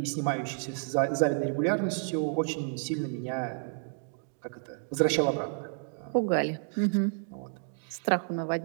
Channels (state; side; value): silent; left; 57 dB below the other